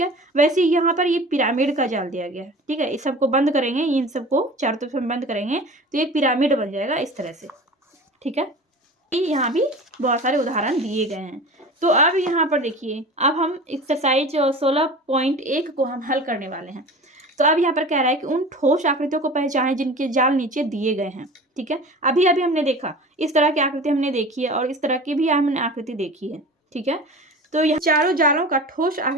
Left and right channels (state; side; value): normal; both; correlation 0.37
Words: वैसे यहाँ पर ये पिरामिड का जाल दिया गया है। ठीक है, इस सबको बंद करेंगे, इन सबको चारों तरफ हम बंद करेंगे तो एक पिरामिड बन जाएगा इस तरह से। ठीक है, यहाँ भी बहुत सारे उदाहरण दिए गए हैं। तो अब यहाँ पर देखिए, अब हम एक्सरसाइज 16.1 को हम हल करने वाले हैं। तो अब यहाँ पर कह रहा है कि उन ठोस आकृतियों को पहचानें जिनके जाल नीचे दिए गए हैं। ठीक है, अभी अभी हमने देखा इस तरह की आकृति हमने देखी है और इस तरह की भी हमने आकृति देखी है। ठीक है, तो यह चारों जालों का ठोस